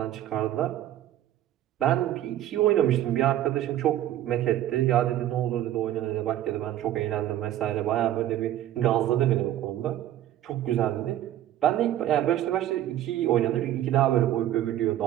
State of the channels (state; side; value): quieter; left; 12.8 dB